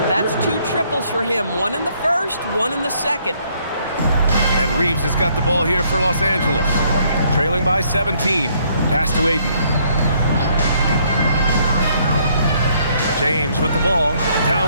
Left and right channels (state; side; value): inverted; both; correlation -0.67